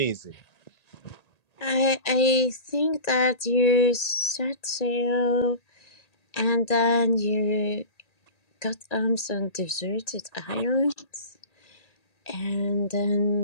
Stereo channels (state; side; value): late; right; 1.9 ms